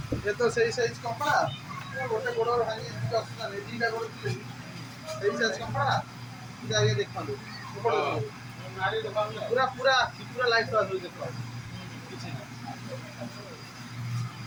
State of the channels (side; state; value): both; identical; correlation 1.00